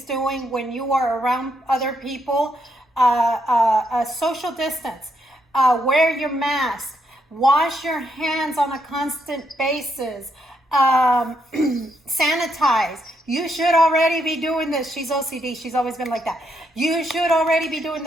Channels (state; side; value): normal; both; correlation 0.77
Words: doing when you are around other people. Social distance, wear your mask, wash your hands on a constant basis, sanitize. You should already be doing this. She's OCD. She's always been like that. You should already be doing